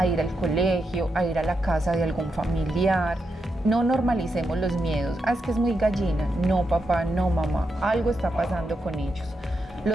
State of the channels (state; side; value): normal; both; correlation 0.85